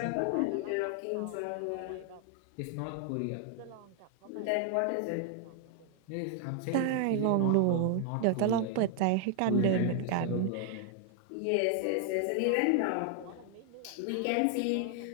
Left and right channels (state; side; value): different; both; correlation 0.00